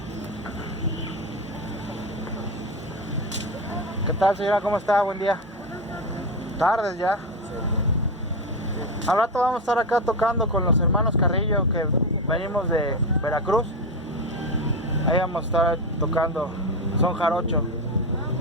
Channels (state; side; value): normal; both; correlation 0.14